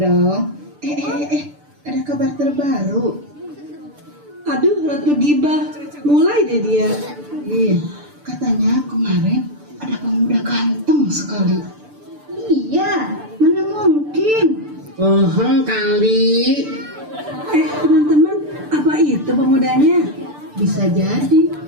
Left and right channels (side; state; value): left; late; 6.8 ms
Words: Ada kabar terbaru. Aduh, Ratu Gibah, mulai deh dia. Iya, katanya kemarin ada pemuda ganteng sekali. Iya, mana mungkin. Kali. Teman-teman, Bisa jadi.